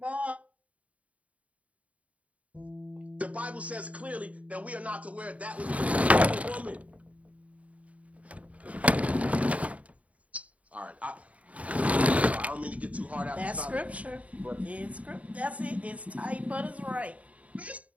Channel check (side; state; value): left; late; 0.067 ms